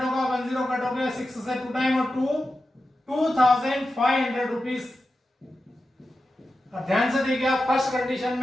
होगा 10 कट हो गया 6 से 2 टाइम और 2,500 रुपीज। ध्यान से देखिए आप, फर्स्ट कंडीशन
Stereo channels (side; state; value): both; normal; correlation 0.92